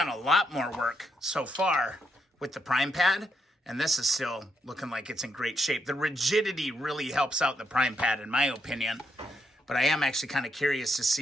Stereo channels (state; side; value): normal; both; correlation 0.78